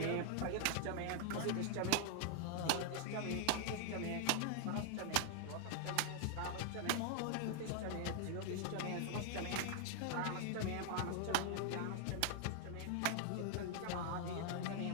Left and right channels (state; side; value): different; both; correlation 0.00